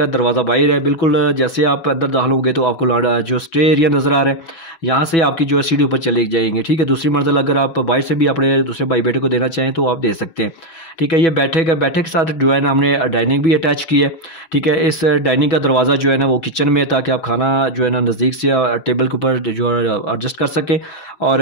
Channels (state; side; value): late; right; 6.1 ms